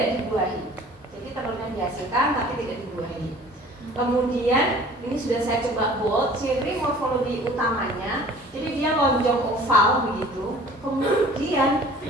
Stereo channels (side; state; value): both; normal; correlation 0.48